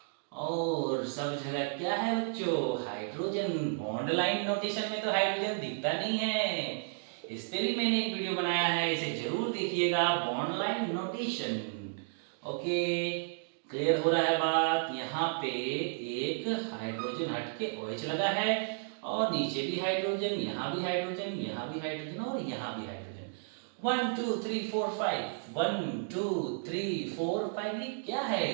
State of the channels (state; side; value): silent; left; digital silence